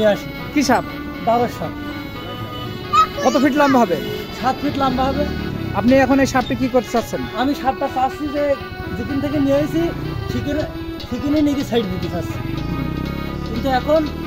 আসি। কি সাপ? বাবার সাপ। কত ফিট লম্বা হবে? 7 ফিট লম্বা হবে। আপনি এখন এই সাপটি কি করতে চাচ্ছেন? আমি সাপটা চাচ্ছি যে যেদিন থেকে নিয়ে এসেছি সেখানে নিয়ে সাইড দিতে চাচ্ছি, কিন্তু এখন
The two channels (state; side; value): identical; both; correlation 1.00